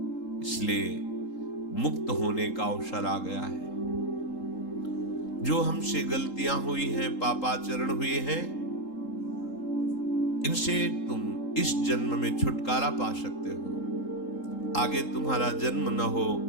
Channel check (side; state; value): right; late; 3.8 ms